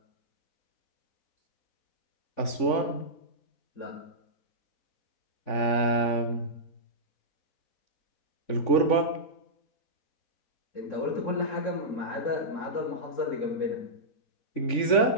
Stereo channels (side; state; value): right; late; 3.5 ms